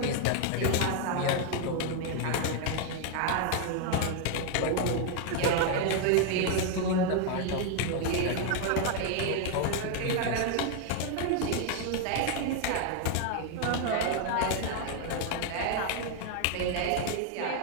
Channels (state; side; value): different; both; correlation 0.00